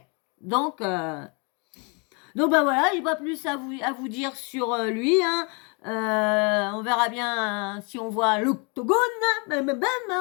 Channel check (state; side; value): quieter; right; 32.9 dB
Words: Donc bah voilà, j'ai pas plus à vous dire sur lui, hein. On verra bien si on voit l'octogone,